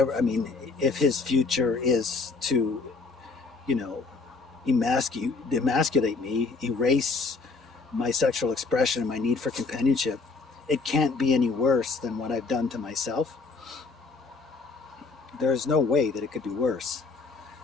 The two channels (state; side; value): quieter; right; 4.2 dB